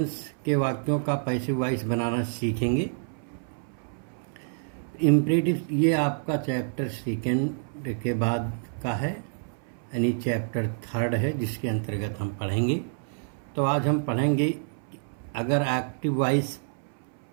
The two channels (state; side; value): silent; left; 59 dB below the other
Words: के वाक्यों का पैसिव वॉइस बनाना सीखेंगे। इम्परेटिव ये आपका चैप्टर सेकेंड के बाद का है, यानी चैप्टर थर्ड है, जिसके अंतर्गत हम पढ़ेंगे। तो आज हम पढ़ेंगे अगर एक्टिव वॉइस